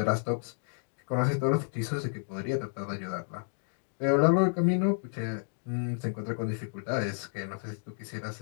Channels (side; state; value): right; silent; 57 dB below the other